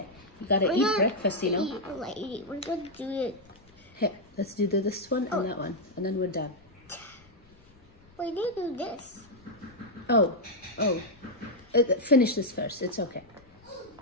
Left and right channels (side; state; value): left; noise; rumble, 28 dB below the sound